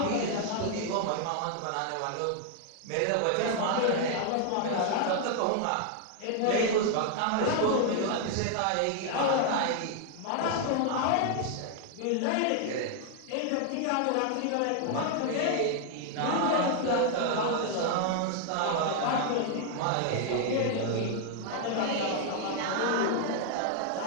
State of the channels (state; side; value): different; both; correlation 0.00